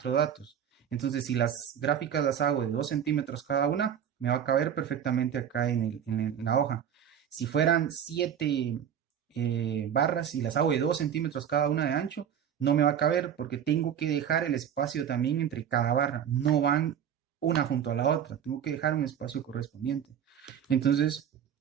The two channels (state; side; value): quieter; left; 8.9 dB